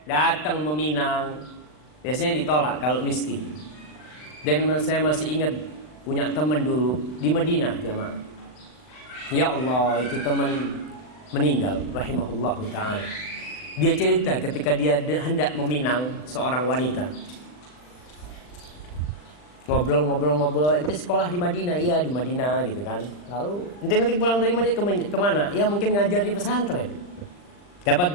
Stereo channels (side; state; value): right; late; 39 ms